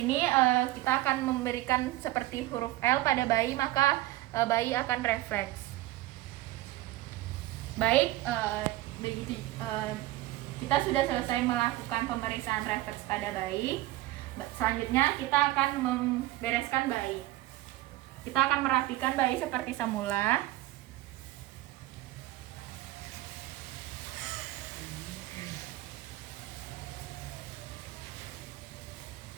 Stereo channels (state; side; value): quieter; left; 17.0 dB